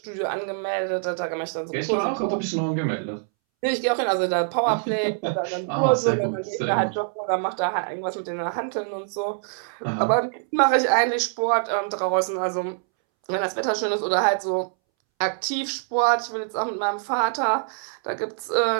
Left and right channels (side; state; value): left; silent; 62 dB below the other